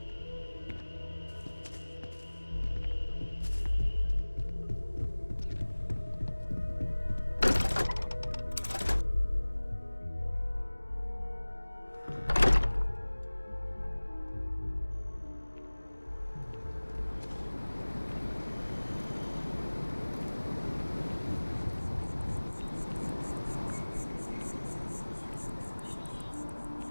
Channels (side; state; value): both; inverted; correlation -1.00